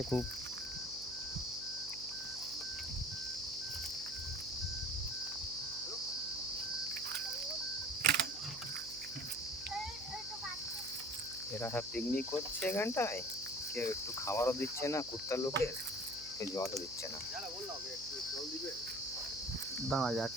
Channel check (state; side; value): noise; right; hum, 19 dB below the sound